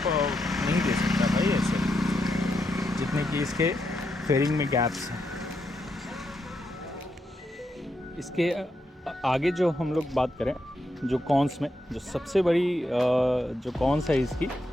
नहीं दे सकता भाई ऐसे, जितने कि इसके फेयरिंग में गैप्स हैं। इसके आगे जो हम लोग बात करें, जो कॉन्स में जो सबसे बड़ी जो कॉन्स है इसकी,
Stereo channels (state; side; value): normal; both; correlation 0.82